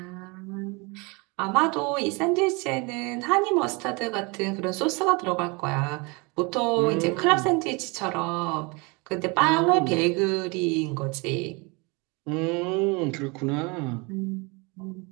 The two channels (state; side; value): quieter; left; 28.5 dB